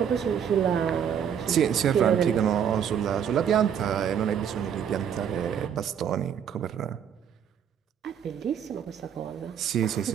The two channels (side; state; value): left; quieter; 8.4 dB